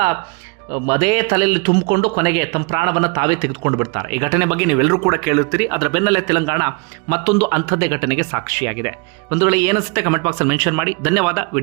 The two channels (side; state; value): left; quieter; 30.3 dB